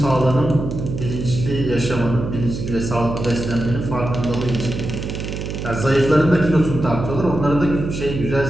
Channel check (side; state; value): right; noise; hum, 6 dB below the sound